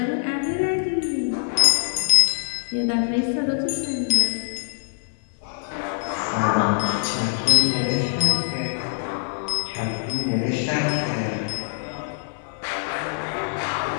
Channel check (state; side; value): silent; right; 58 dB below the other